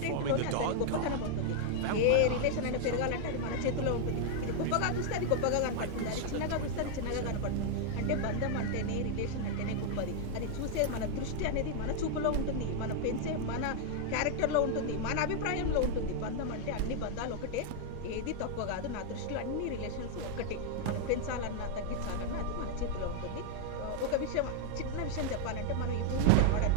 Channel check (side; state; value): both; different; correlation 0.00